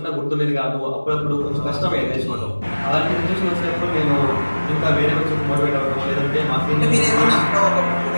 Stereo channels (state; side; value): inverted; both; correlation -1.00